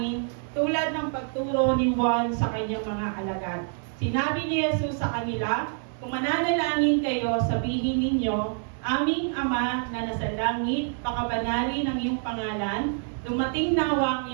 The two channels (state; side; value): silent; left; 60 dB below the other